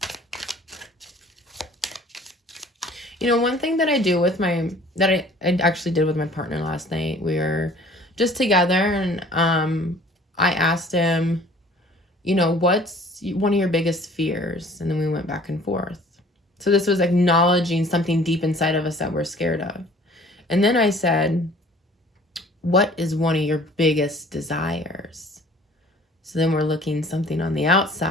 You know, one thing that I do with I actually did with my partner last night, we were just together, and I asked him, you know, what's one of your biggest fears? And then we went back and forth. So this was acknowledging something deep inside of us that we're scared of. And then I said, what is one of your biggest desires? So then we're looking something on the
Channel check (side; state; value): both; normal; correlation 0.51